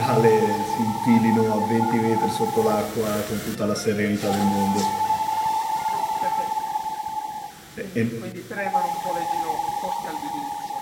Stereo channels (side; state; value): both; identical; correlation 1.00